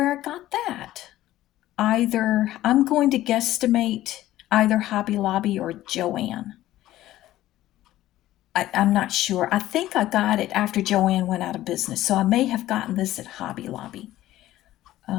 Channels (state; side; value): quieter; right; 14.8 dB